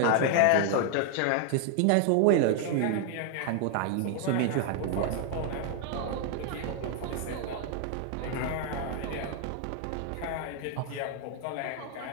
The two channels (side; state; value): both; different; correlation 0.00